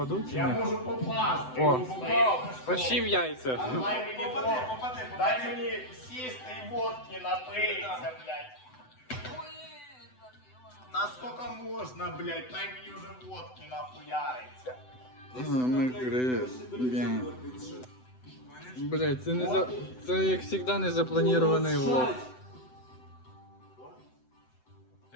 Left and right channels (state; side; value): late; right; 7.9 ms